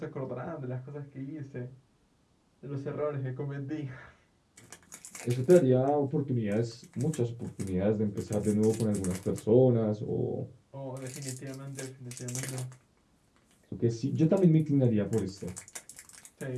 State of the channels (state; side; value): identical; both; correlation 1.00